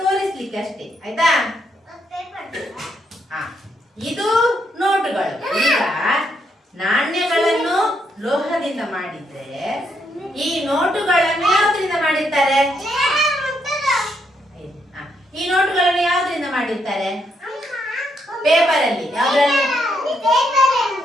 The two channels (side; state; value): both; normal; correlation 0.76